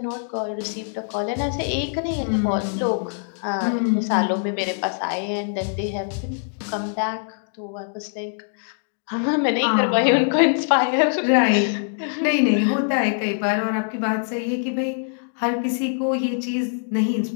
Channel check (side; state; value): right; silent; digital silence